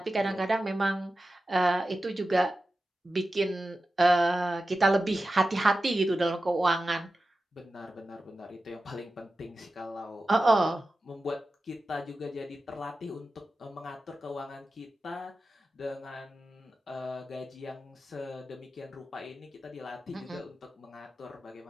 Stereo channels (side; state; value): both; normal; correlation 0.93